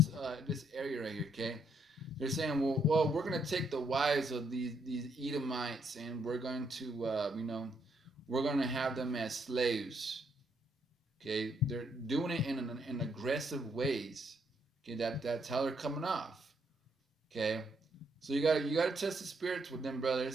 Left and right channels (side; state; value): both; normal; correlation 0.73